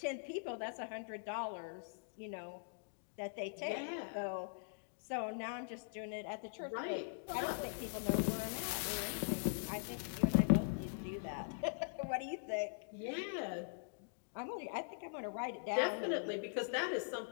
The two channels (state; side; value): silent; right; digital silence